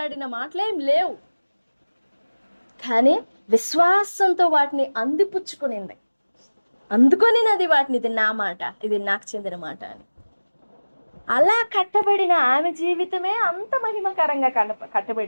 మాటలేం లేవు, కానీ విశ్వాసంతో వాటిని అందిపుచ్చుకునింది. అందుకొనినది వాటిని, ఇది నా మాట, ఇది నాకు చెందిన మాట అని. అలా కట్టబడిన ఆమె జీవితమే అంత మహిమకరంగా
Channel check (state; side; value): inverted; both; correlation -1.00